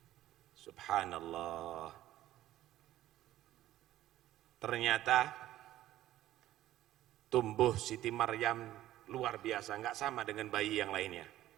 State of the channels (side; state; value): left; quieter; 14.0 dB